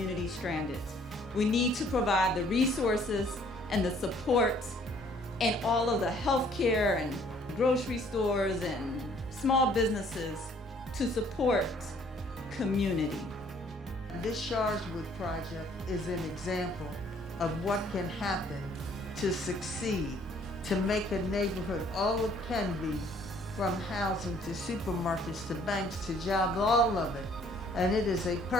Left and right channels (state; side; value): normal; both; correlation 0.60